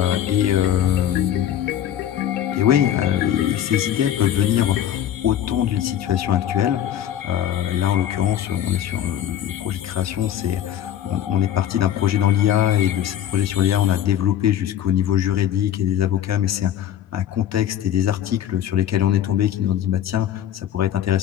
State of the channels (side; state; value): right; quieter; 10.8 dB